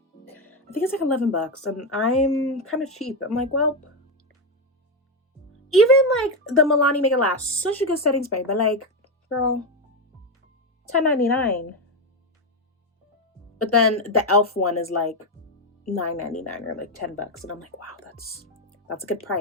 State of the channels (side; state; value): both; normal; correlation 0.08